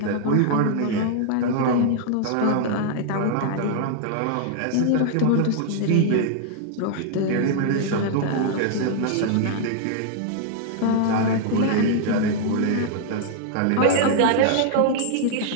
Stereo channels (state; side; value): different; both; correlation -0.01